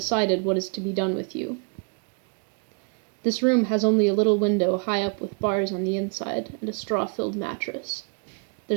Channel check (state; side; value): quieter; left; 36.3 dB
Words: what is to be done with you. This room has only a little window high up with bars on the inside, and a straw-filled mattress.